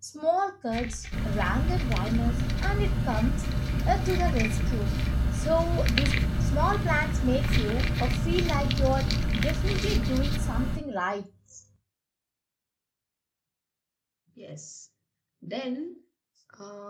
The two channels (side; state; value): both; identical; correlation 1.00